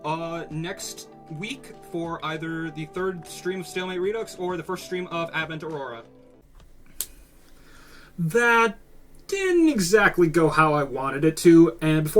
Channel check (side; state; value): both; identical; correlation 1.00